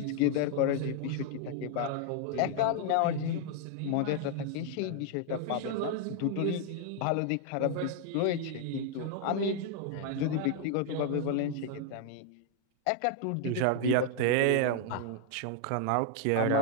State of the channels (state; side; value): different; both; correlation 0.00